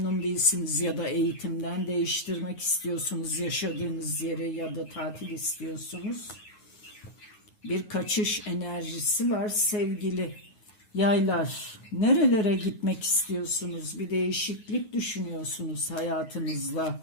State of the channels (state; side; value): late; right; 9.4 ms